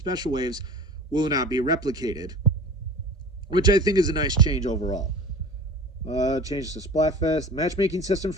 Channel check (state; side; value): normal; both; correlation 0.38